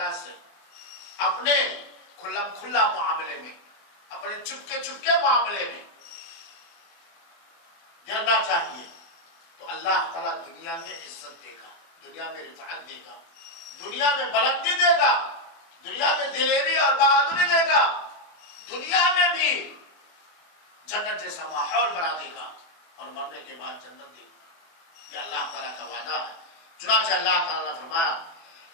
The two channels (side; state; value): right; late; 24 ms